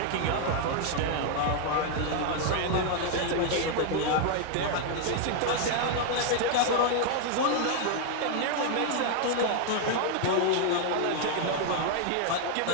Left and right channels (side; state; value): both; different; correlation 0.00